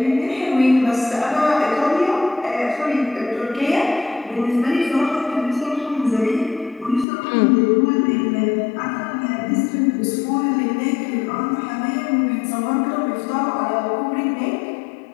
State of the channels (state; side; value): drops out; right; at 7.1 s